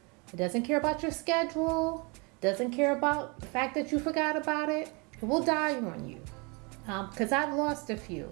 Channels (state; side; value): quieter; left; 30.3 dB